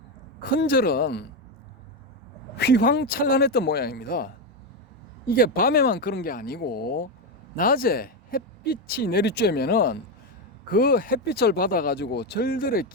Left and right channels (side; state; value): both; normal; correlation 0.09